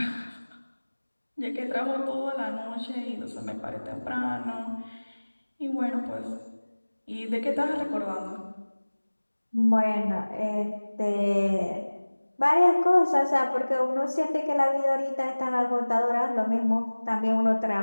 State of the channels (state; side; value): inverted; both; correlation -1.00